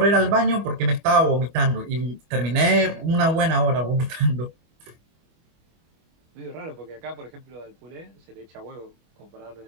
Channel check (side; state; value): left; late; 25 ms